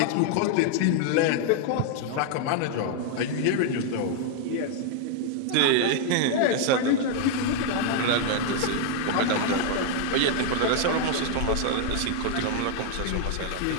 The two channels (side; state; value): both; different; correlation 0.00